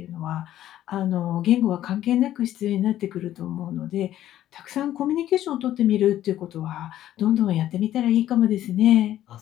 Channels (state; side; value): quieter; right; 12.6 dB